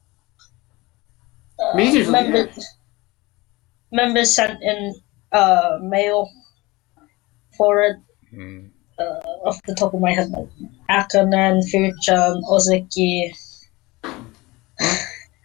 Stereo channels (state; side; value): quieter; right; 22.2 dB